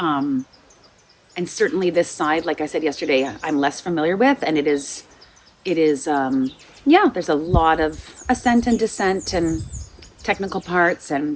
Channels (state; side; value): identical; both; correlation 1.00